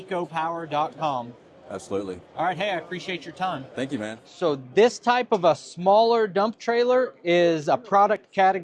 Absolutely. All right, hey, I appreciate your time. Thank you, man. So this type of a smaller dump trailer is a product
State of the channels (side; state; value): both; identical; correlation 1.00